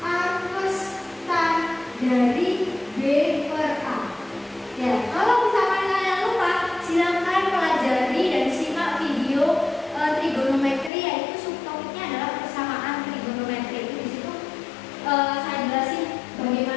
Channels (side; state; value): right; drops out; at 10.9 s